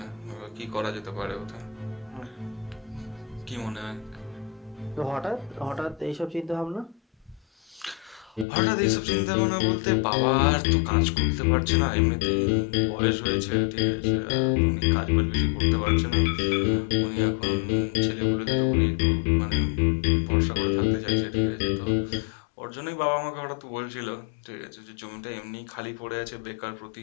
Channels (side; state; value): right; drops out; at 8.5 s